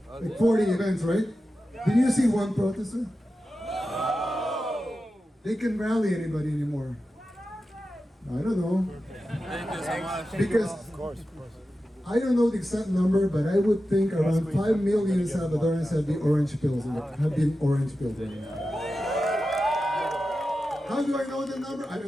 40 events, right? Did you see one protester? They can rally anybody anymore. I don't know. Because I don't know the exact number, but I would think around 5 million Salvadorans have the orange pills. Have been orange pills right now. How do I know the number? I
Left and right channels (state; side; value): normal; both; correlation 0.92